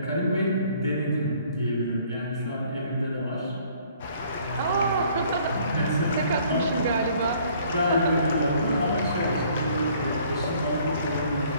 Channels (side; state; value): both; inverted; correlation -0.59